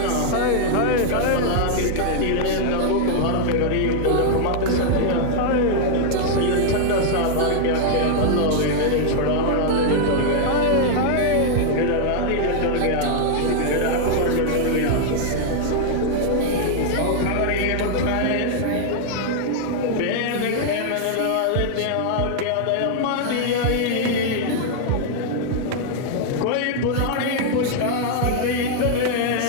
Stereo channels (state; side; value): different; both; correlation -0.01